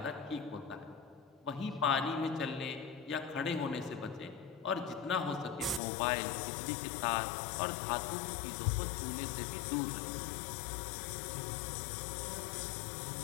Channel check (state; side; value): drops out; right; at 5.8 s